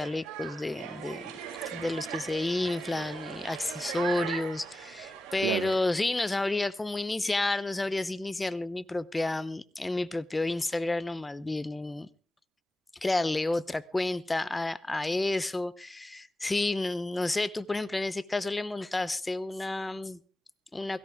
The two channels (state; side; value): normal; both; correlation 0.93